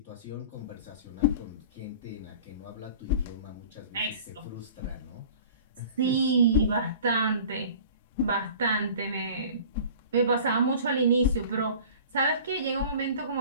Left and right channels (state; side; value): inverted; both; correlation -0.44